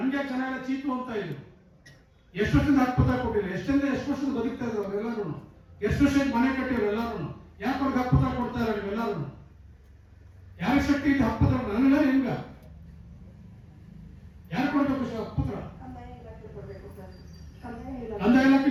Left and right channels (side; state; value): both; identical; correlation 1.00